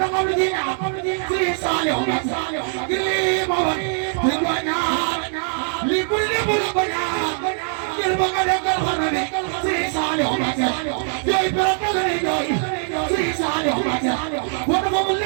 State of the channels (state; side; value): silent; left; 59 dB below the other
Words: taxaw lu ji ñaar Sëriñ Saaliw Mbàkke ngir lii ma wax li ko ñaar li bul li bul ko ñaar ngir ba nga dekkal xam lu bi Sëriñ Saaliw Mbàkke jooy pere ka lay jooy Sëriñ Saaliw Mbàkke wala ko mu